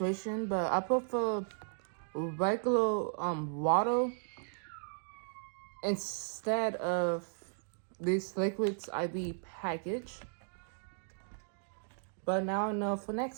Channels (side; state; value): left; silent; digital silence